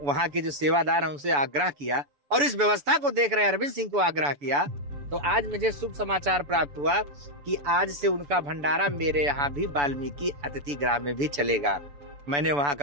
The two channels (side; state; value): left; late; 6.9 ms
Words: वहाँ के जो सेवादार हैं उनसे आग्रह किया और इस व्यवस्था को देख रहे अरविंद सिंह को आग्रह किया। तो आज मुझे शुभ समाचार प्राप्त हुआ कि आज से उनका भंडारा मेरे यहाँ भी वाल्मीकि अतिथि गृह में भी चलेगा। मैंने वहाँ